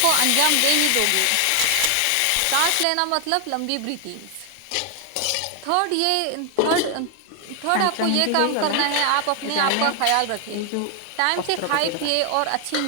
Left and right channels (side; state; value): both; different; correlation 0.00